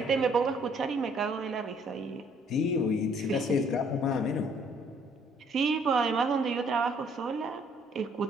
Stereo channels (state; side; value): normal; both; correlation 0.63